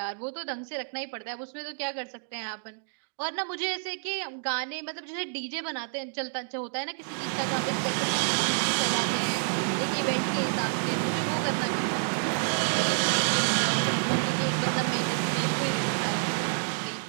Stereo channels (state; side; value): silent; left; digital silence